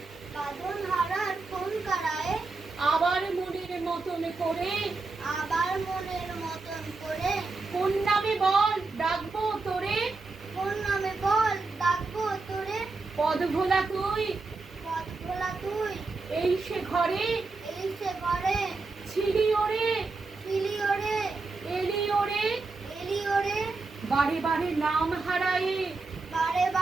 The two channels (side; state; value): left; quieter; 3.8 dB